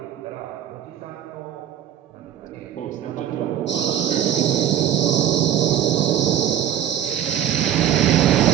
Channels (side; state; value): left; quieter; 10.6 dB